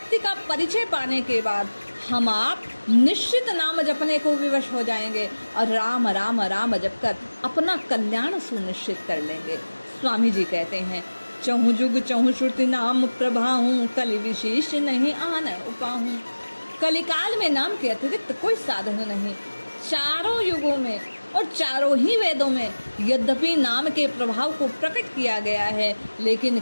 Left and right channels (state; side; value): inverted; both; correlation -1.00